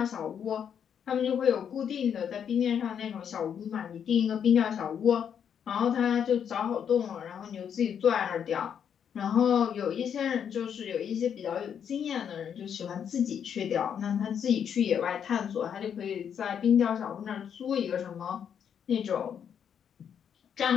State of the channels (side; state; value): right; quieter; 8.1 dB